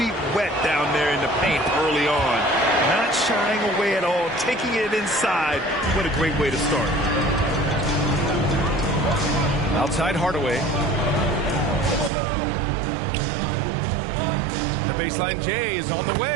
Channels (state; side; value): drops out; left; at 12.1 s